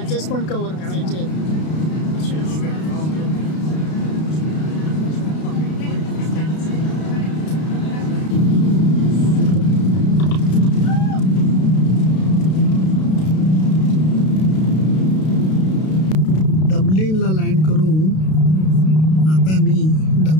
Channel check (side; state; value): right; late; 32 ms